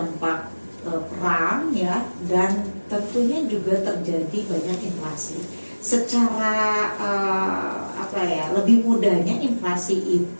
perang ya, dan tentunya juga terjadi banyak inflasi. Secara lebih mudahnya inflasi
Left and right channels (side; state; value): both; inverted; correlation -1.00